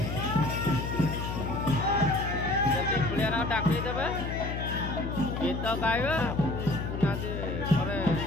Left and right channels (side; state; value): left; noise; hum, 4 dB below the sound